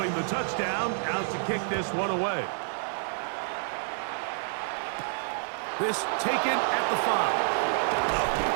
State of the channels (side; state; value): left; silent; 59 dB below the other